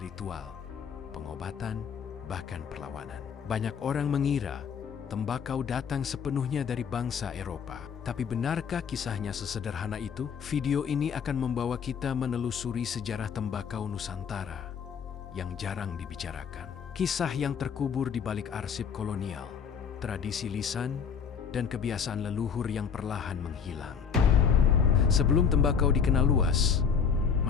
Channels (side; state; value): right; quieter; 6.8 dB